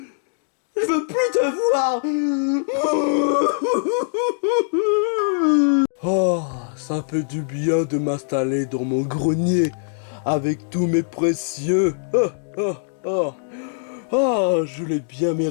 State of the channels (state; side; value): silent; right; digital silence